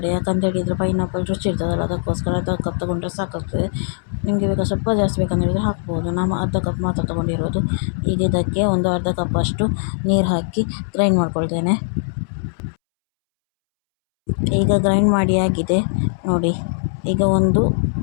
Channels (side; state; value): right; silent; 66 dB below the other